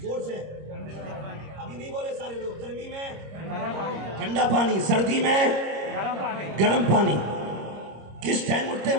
سے، ابھی نہیں بولے سارے لوگ. گرمی میں ٹھنڈا پانی، سردی میں گرم پانی. کس ٹائم اٹھتے ہیں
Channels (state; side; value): late; left; 26 ms